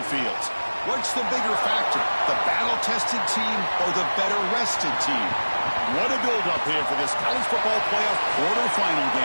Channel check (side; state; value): both; inverted; correlation -1.00